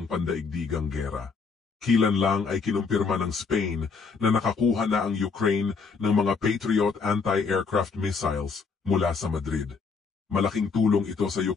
pandaigdigang gera. Kilan lang ay kinumpirma ng Spain na nakakuha na ang Ukraine ng mga Patriot anti-aircraft missiles mula sa Madrid. Malaking tulong ito sa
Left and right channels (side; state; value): right; quieter; 5.0 dB